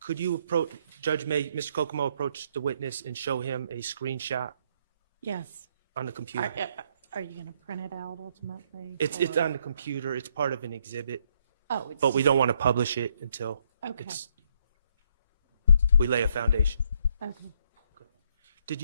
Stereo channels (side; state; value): both; inverted; correlation -0.71